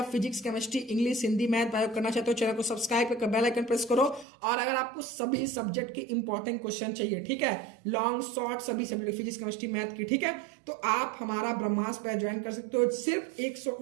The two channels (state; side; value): drops out; left; at 4.2 s